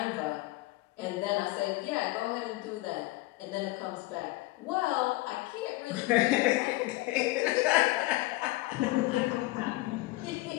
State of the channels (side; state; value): right; quieter; 19.7 dB